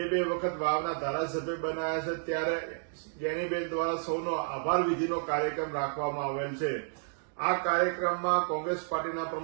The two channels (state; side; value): silent; left; digital silence